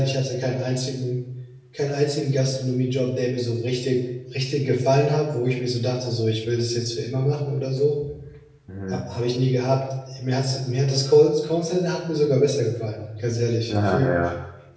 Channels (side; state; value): both; identical; correlation 1.00